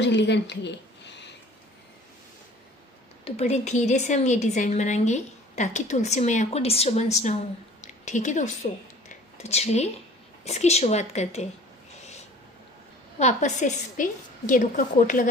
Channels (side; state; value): both; normal; correlation 0.48